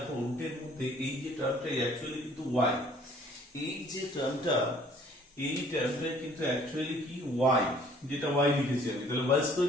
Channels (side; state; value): both; normal; correlation 0.57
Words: রুটের মধ্যে এই যে টার্মটা অ্যাকচুয়ালি কিন্তু y, এই যে টার্মটা এই টার্মটা কিন্তু অ্যাকচুয়ালি কি y, যেটা y লিখেছি আমি, তাহলে y square